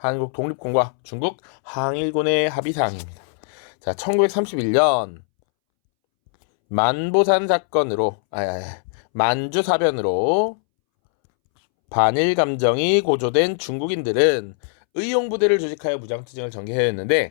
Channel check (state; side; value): silent; right; 65 dB below the other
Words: 독립군과 중국 항일군의 합의사항입니다. 자, 1931년 만보산 사건으로 만주 사변으로 반일 감정이 고조된 중국인들은 의용부대를 조직하여 무장투쟁을